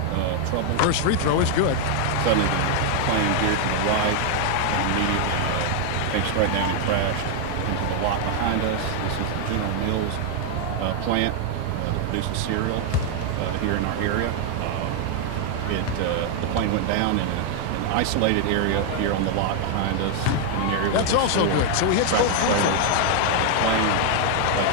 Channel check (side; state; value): both; different; correlation 0.00